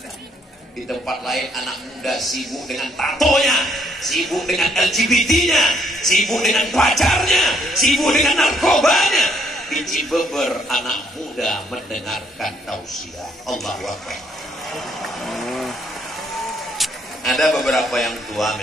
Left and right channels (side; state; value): both; normal; correlation 0.69